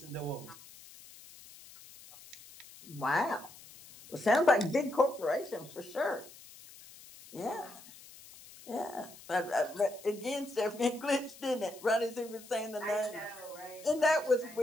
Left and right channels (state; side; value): noise; left; hiss, 19 dB below the sound